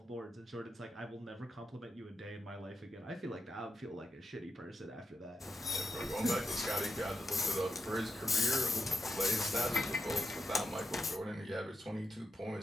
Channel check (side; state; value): both; normal; correlation 0.85